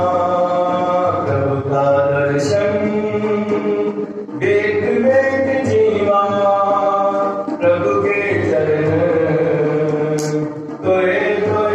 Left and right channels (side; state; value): both; identical; correlation 1.00